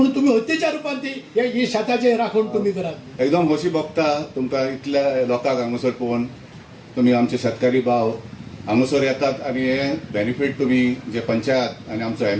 तुम्ही हत्तेच्या रुपान ती ही शेताचे राखण तुम्ही करात. एकदम खोशी भोगता तुमकां इतल्या लोकांक हांगासर पळोवन. तुमी आमचे शेतकारी भाव हांगासर येतात आनी हे बेनिफीट तुमी जे पंचायत आनी आमचो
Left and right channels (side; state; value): both; identical; correlation 1.00